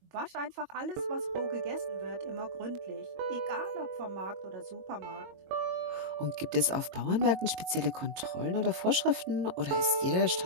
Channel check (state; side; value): late; left; 22 ms